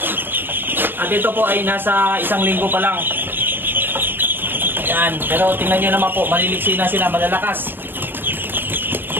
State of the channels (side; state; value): left; late; 0.098 ms